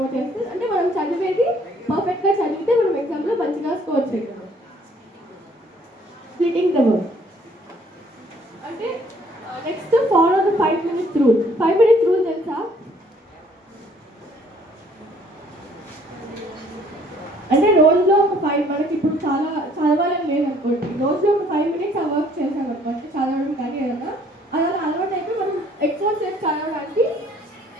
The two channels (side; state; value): both; normal; correlation 0.60